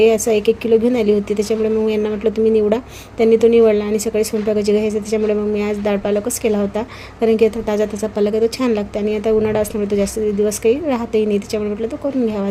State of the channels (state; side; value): identical; both; correlation 1.00